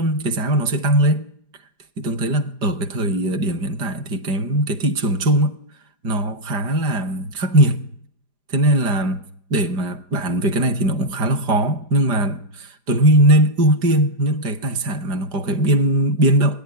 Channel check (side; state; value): left; late; 4.9 ms